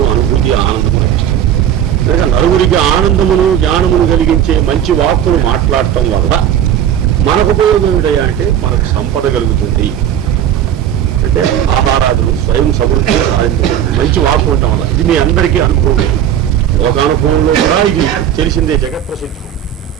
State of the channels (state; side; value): quieter; left; 10.2 dB